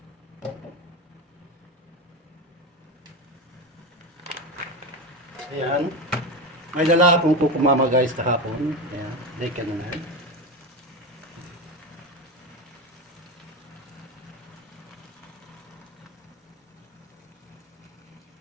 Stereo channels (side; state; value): both; normal; correlation 0.19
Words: Ayan. May dala akong kukumama guys kahapon. Ayan, like ano na. Ayan.